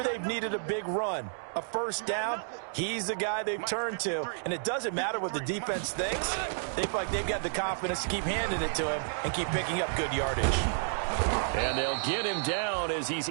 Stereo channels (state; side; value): silent; left; digital silence